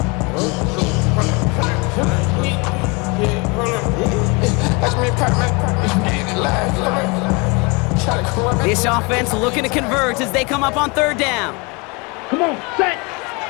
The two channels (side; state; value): right; quieter; 28.8 dB